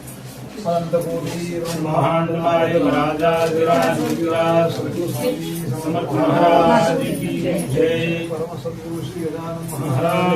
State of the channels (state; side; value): identical; both; correlation 1.00